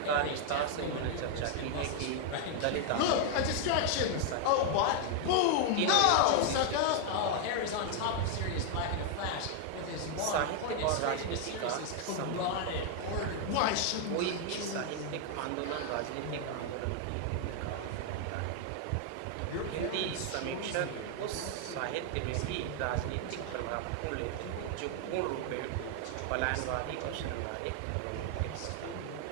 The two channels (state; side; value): different; both; correlation 0.00